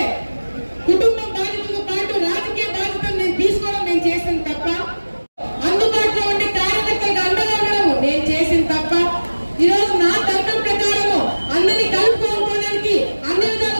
కుటుంబం బాధ్యతతో పాటు రాజకీయ బాధ్యతను నేను తీసుకోవడం నేను చేసిన తప్ప? అందుబాటులో ఉండే కార్యకర్తలకు అండగా ఉండడం నేను చేసిన తప్ప? ఈరోజు నా తర్కం ప్రకారము అందరినీ కలుపుకోవడానికి అన్ని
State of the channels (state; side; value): inverted; both; correlation -1.00